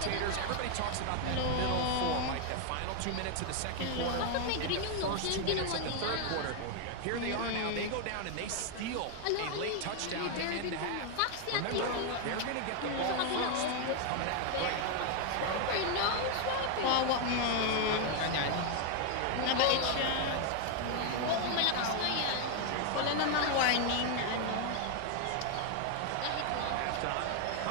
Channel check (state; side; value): different; both; correlation 0.01